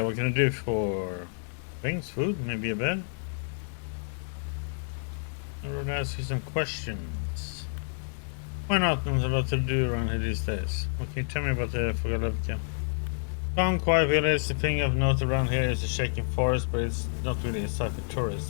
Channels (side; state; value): right; silent; 59 dB below the other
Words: What can I do for things, food, maybe a bed? I would ask you some questions. Why not? There's a lot to do around here these days. What can you tell me about the Vogalevka? Calm, quiet village. The thing of note around here is the shaking forest, but it's not really a site for